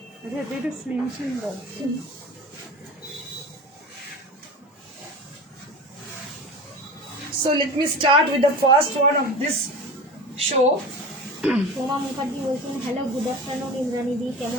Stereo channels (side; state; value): both; normal; correlation 0.32